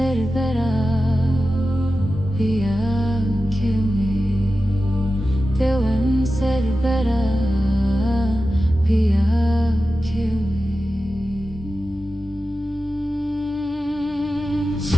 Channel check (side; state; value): both; normal; correlation 0.93